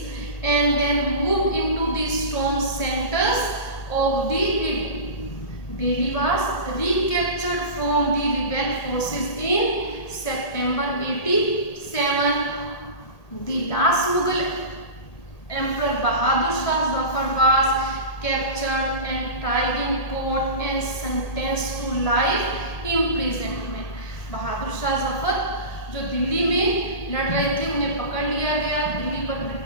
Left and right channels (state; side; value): late; right; 1.8 ms